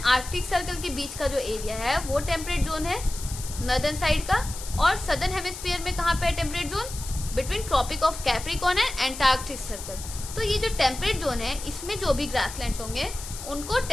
Arctic Circle के बीच का जो एरिया है वो टेम्परेट जोन है नॉर्दर्न साइड का। और सदर्न हेमिस्फीयर में कहाँ पे है temperate zone? Between Tropic of Capricorn and Antarctic Circle. तो ये जो टेम्परेट जोन है इसमें जो भी ग्रासलैंड्स होंगे उनको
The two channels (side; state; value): left; noise; hiss, 11 dB below the sound